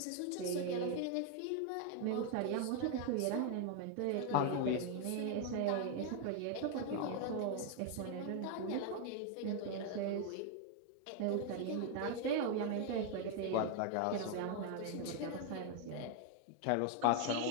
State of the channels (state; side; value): different; both; correlation 0.00